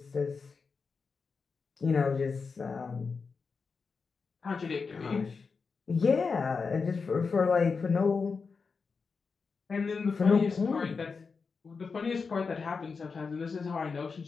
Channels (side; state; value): right; quieter; 5.0 dB